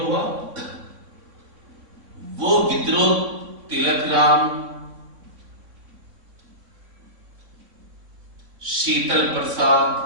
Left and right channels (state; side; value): late; left; 3.5 ms